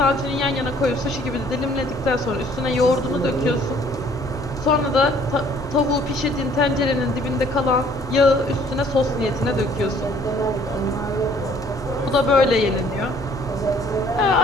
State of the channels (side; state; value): both; normal; correlation 0.58